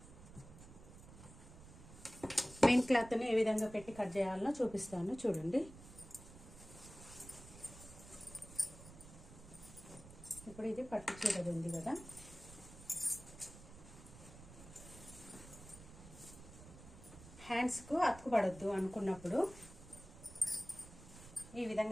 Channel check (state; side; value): noise; right; rumble, 17 dB below the sound